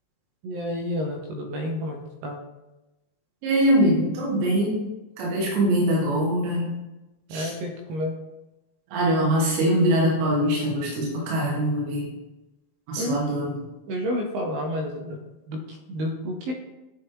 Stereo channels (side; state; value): left; late; 19 ms